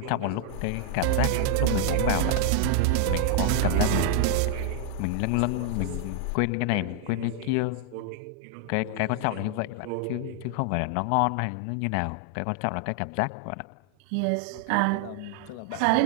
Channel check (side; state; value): both; different; correlation 0.00